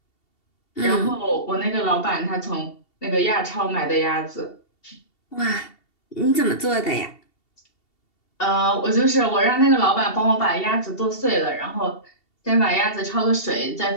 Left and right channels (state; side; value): late; right; 2.7 ms